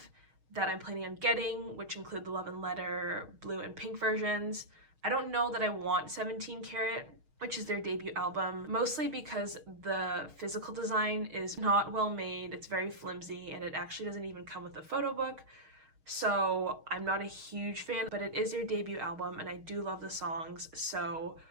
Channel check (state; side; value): late; left; 6.4 ms